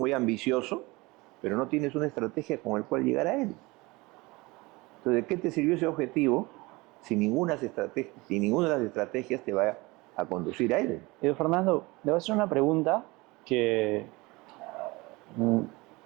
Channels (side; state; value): left; quieter; 23.1 dB